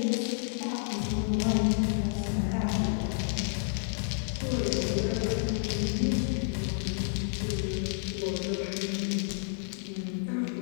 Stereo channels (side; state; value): right; silent; 57 dB below the other